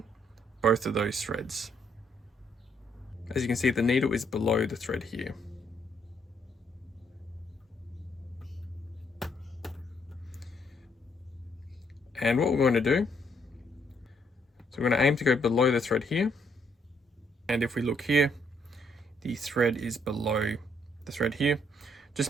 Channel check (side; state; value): both; normal; correlation 0.70